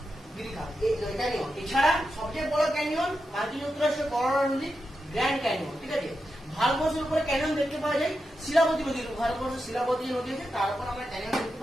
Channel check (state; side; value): normal; both; correlation 0.88